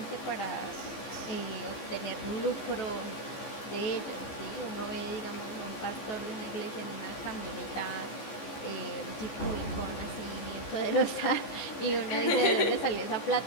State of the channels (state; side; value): late; right; 14 ms